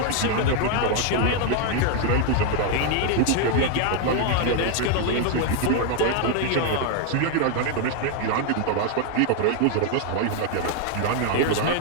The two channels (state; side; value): different; both; correlation 0.00